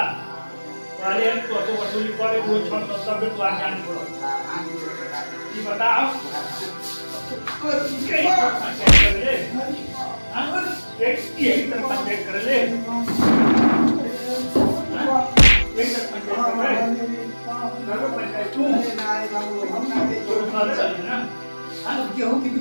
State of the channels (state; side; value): inverted; both; correlation -1.00